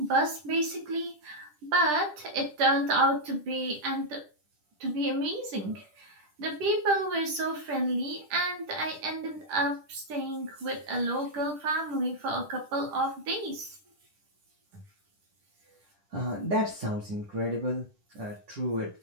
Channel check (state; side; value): late; left; 10 ms